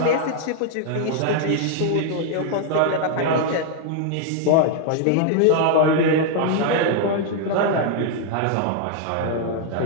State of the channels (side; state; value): both; different; correlation 0.00